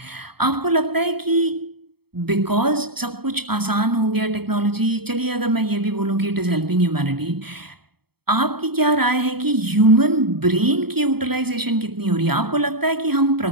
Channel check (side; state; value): left; late; 0.96 ms